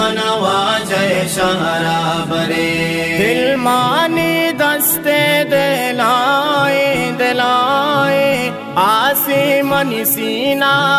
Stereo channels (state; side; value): identical; both; correlation 1.00